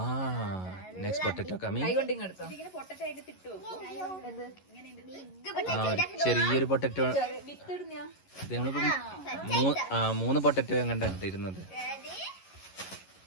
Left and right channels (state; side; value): late; right; 11 ms